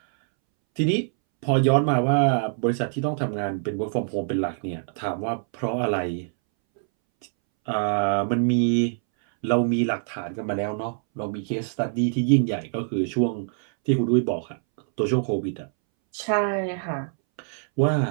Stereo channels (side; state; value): left; silent; 62 dB below the other